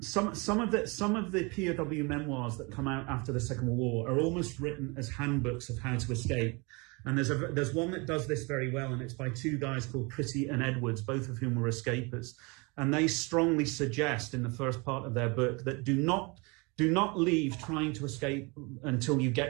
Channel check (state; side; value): quieter; left; 28.6 dB